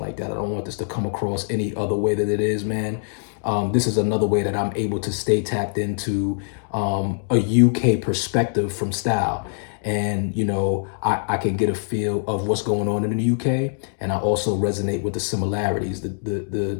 that. I don't want this to come across any other way that it is, man. This is another way that I'm able to stay tapped into a UK perspective from style. And, I can get a feel of what's going on in the UK. And I also resonate with the similarities, the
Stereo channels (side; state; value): right; silent; digital silence